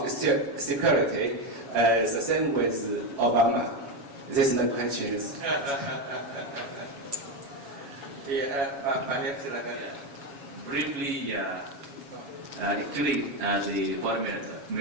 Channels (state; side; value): late; left; 7.2 ms